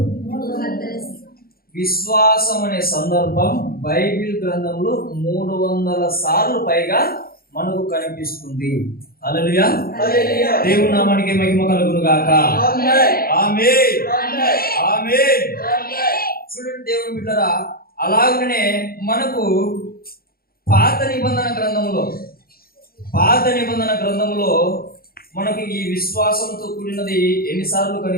విశ్వాసం అనే సందర్భం బైబిల్ గ్రంథంలో 300 సార్లు పైగా మనకు కనిపిస్తుంది. హల్లెలూయా. దేవుని నామానికి మహిమ కలుగును గాక. ఆమేన్, ఆమేన్. చూడండి దేవుని బిడ్డలారా, అలాగనే మనకు పాత నిబంధన గ్రంథంలో మనకు ఈ విశ్వాసంతో కూడినది ఎన్నిసార్లు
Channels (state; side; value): late; right; 0.44 ms